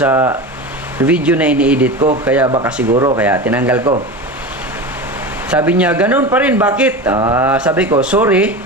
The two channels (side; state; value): both; normal; correlation 0.27